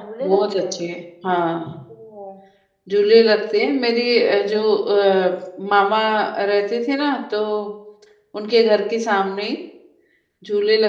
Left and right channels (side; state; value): both; identical; correlation 1.00